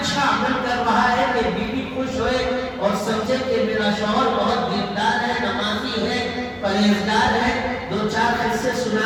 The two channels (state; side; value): identical; both; correlation 1.00